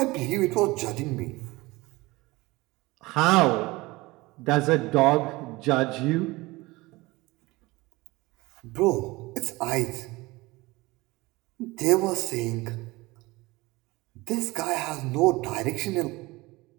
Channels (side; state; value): left; quieter; 21.6 dB